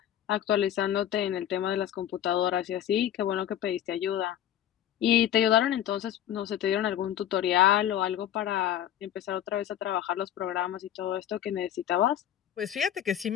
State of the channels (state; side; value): quieter; right; 11.0 dB